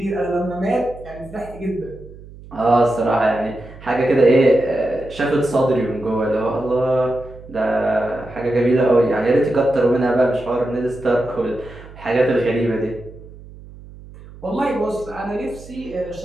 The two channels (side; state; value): right; noise; hum, 18 dB below the sound